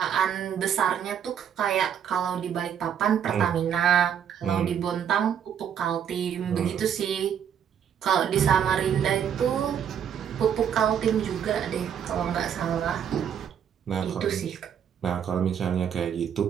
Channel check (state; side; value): quieter; left; 8.6 dB